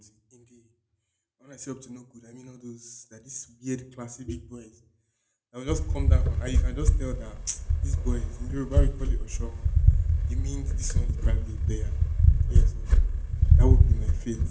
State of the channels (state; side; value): identical; both; correlation 1.00